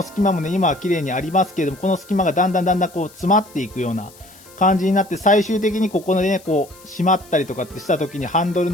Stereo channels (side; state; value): left; noise; hiss, 23 dB below the sound